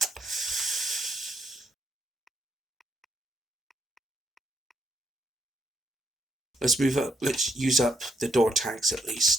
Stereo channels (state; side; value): normal; both; correlation 0.76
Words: Let's use up the door tags at